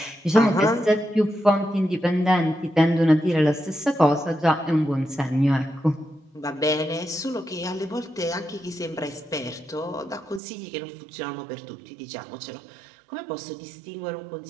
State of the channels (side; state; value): left; drops out; at 10.4 s